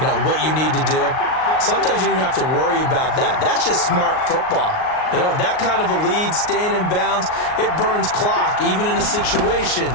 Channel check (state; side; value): late; right; 38 ms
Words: know, what you need to do? Sometimes you don't have to worry about that. That's just smart football. You know, that kind of a lead, staying in bounds, it burns clock, even in a situation